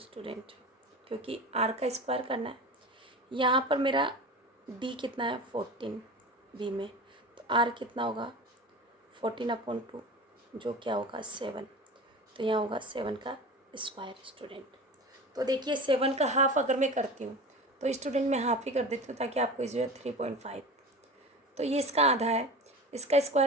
क्योंकि आर का स्क्वायर करना है, यहाँ पर मेरा d कितना है 14 b में, तो आर कितना होगा 14/2, जो क्या होगा 7, तो यहाँ होगा 7 का स्क्वायर स्टूडेंट। तो देखिए 7 का हाफ अगर मैं करती हूँ तो स्टूडेंट मैं हाफ ही कर देती हूँ, ताकि आपको इस 3.5, तो ये इसका आधा है। इसका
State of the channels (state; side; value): normal; both; correlation 0.33